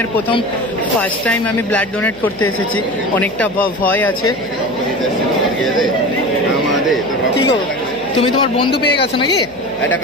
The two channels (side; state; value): left; noise; hum, 23 dB below the sound